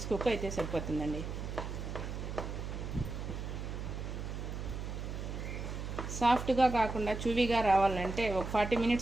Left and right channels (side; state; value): right; noise; hum, 5 dB below the sound